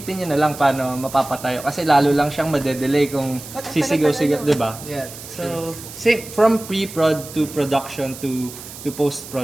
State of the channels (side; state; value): right; noise; hiss, 14 dB below the sound